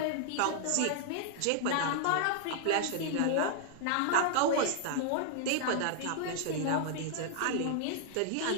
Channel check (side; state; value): both; different; correlation -0.01